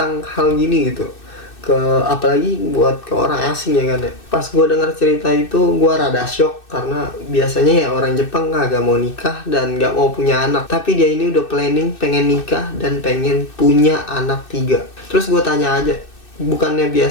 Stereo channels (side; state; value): right; late; 2.6 ms